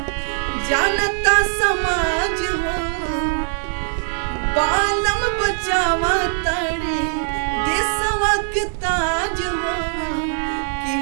जानता समाज हो बालम बचावा तड़े देशवा के ताज हो कि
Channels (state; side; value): silent; left; digital silence